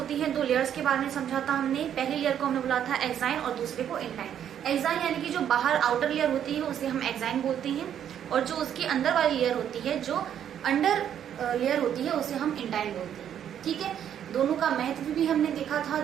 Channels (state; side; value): quieter; left; 9.6 dB